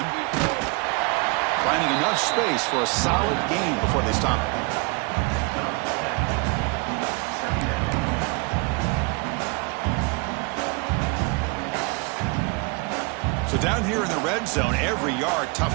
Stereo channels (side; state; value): left; quieter; 28.9 dB